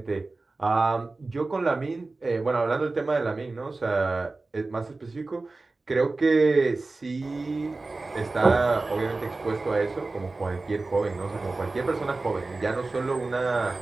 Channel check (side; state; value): left; quieter; 3.4 dB